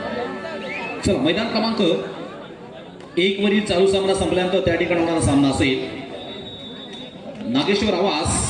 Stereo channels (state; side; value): identical; both; correlation 1.00